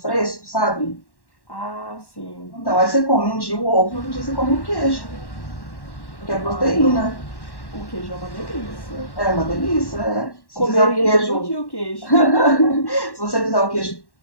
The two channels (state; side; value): late; right; 1.1 ms